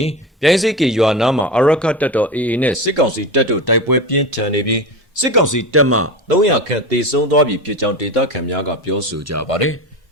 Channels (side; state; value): both; normal; correlation 0.24